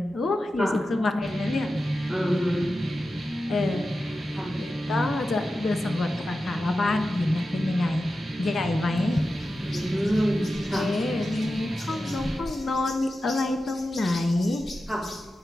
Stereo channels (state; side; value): normal; both; correlation 0.92